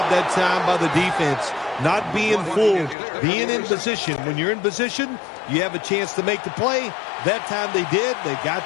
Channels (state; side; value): drops out; right; at 3.0 s